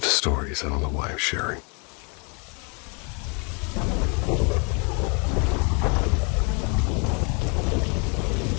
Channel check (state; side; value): quieter; right; 34.1 dB